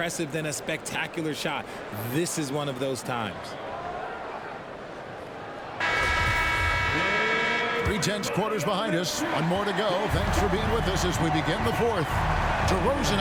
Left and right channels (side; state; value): both; identical; correlation 1.00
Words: than a spectacular shot. This is one of those times. 3/10 quarters behind us. One more to go. Thanks for being with us as we begin the fourth. DeRozan